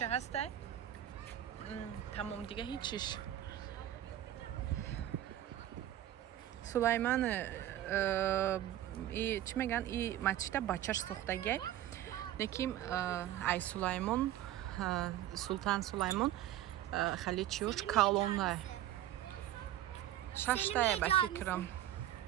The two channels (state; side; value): quieter; left; 12.9 dB